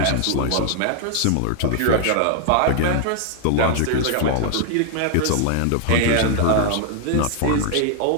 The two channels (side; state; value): both; different; correlation 0.00